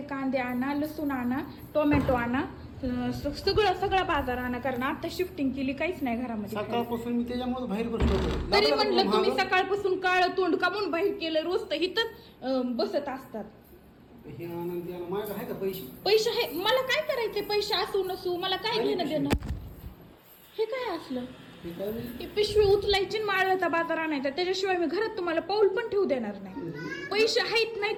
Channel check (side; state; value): both; identical; correlation 1.00